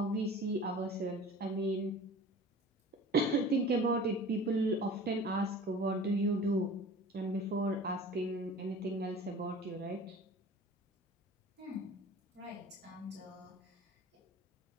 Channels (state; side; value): normal; both; correlation 0.41